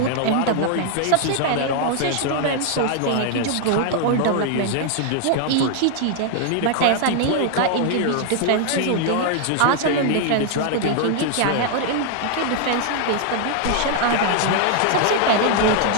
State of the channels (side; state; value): both; different; correlation 0.00